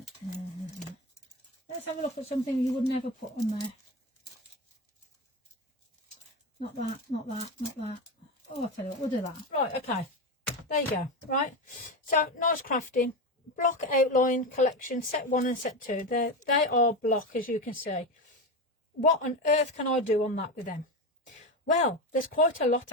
Let's have a look at something you would never put on there. Not that, not that, not that. Oh, I'll tell you what, we'll do that. Right, okay. There you go. Right. So, nice crafting. Block outline collection, set 1 and set 2. They are block, as you can see. What on earth can I do on that with them? Well, there's quite a lot,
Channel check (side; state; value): both; normal; correlation 0.18